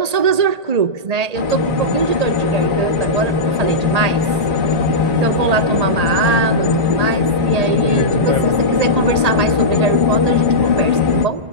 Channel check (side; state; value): left; late; 1.8 ms